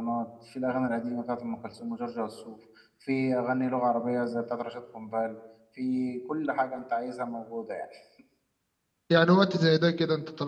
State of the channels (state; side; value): identical; both; correlation 1.00